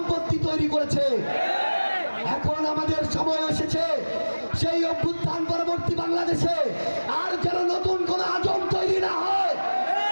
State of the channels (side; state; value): both; inverted; correlation -1.00